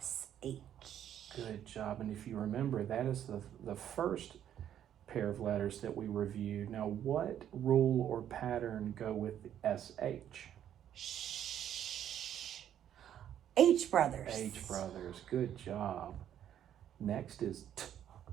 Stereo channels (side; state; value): left; quieter; 10.3 dB